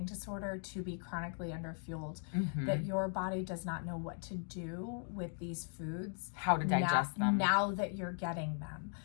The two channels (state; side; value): silent; right; 52 dB below the other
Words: disorder to be chronically underfueled, that your body does not know what to do with these foods, how to digest them now that you're getting them.